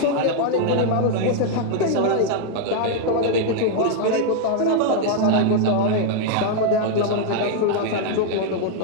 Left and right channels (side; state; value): both; different; correlation 0.00